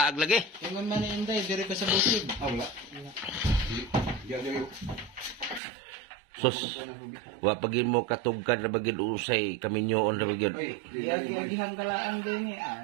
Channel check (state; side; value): drops out; left; at 5.6 s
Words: lagi. Tingon man ni Inday, dire pa sa bukid. Ah, wala. Diya diri. Sus, wa pagin mo katugkan na bagid usay kami nyoon na bagid. Ay, Iagi-agihan ka lang din eh.